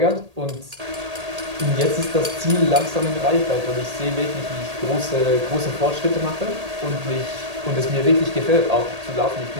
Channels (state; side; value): late; left; 1.8 ms